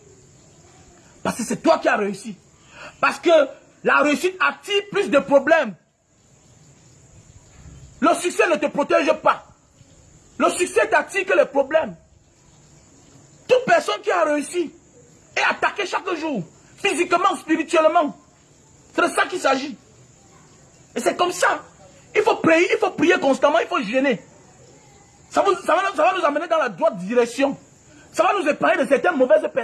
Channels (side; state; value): both; identical; correlation 1.00